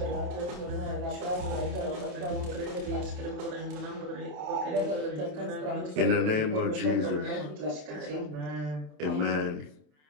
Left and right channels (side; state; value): left; late; 27 ms